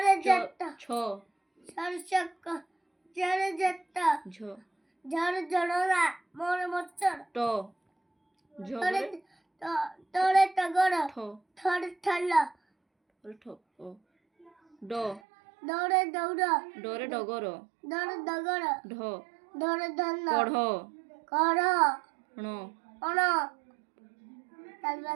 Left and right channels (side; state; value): left; drops out; at 15.2 s